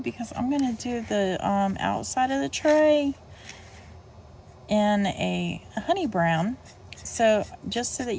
because I'm going to do the outside of the tray in a honey brown, so just so that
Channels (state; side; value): identical; both; correlation 1.00